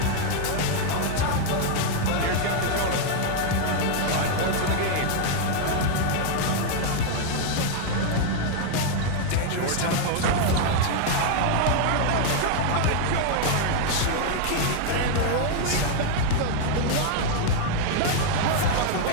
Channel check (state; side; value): different; both; correlation 0.00